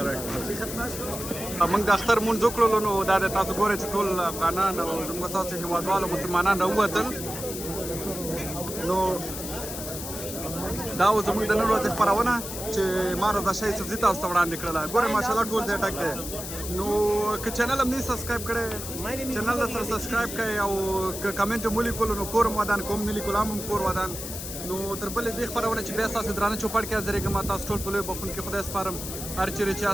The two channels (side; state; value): left; noise; hiss, 8 dB below the sound